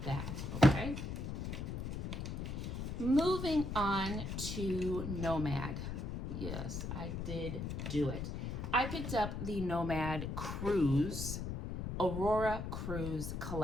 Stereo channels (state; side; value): noise; left; rumble, 4 dB below the sound